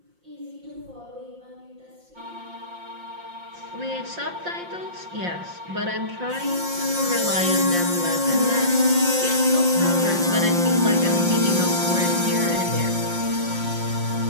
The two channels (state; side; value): late; left; 5.7 ms